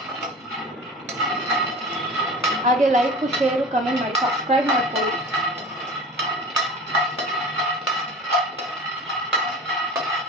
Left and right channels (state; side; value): normal; both; correlation 0.38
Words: ಹಾಗೆ ಲೈಕ್, ಶೇರು, ಕಮೆಂಟ್ ಮಾಡಿ, ಸಬ್ಸ್ಕ್ರೈಬ್ ಮಾಡ್ಕೊಳ್ಳಿ.